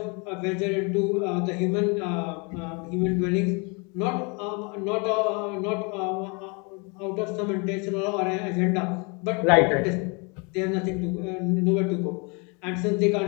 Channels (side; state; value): right; quieter; 32.1 dB